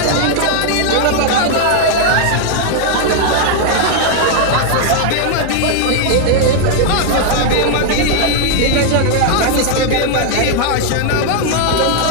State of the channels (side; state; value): both; different; correlation 0.00